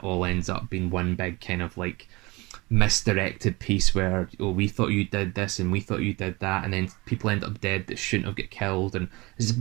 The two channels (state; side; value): quieter; left; 23.7 dB